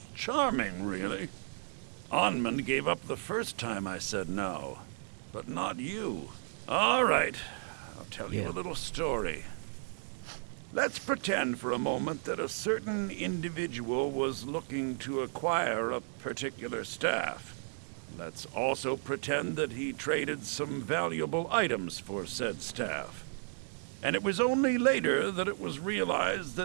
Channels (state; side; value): silent; left; digital silence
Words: Charming, really. Onmund gave up the first time I said no, but not you. All right, I'll tell you a little story. Let's pretend for a moment that a certain individual was looking to acquire a particular staff. Let's also pretend that he traded some valuable items for said staff. And it was only later that it was realized